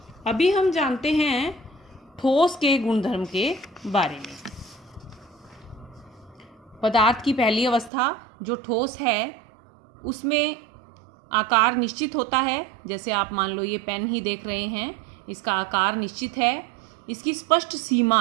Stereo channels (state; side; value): drops out; left; at 7.9 s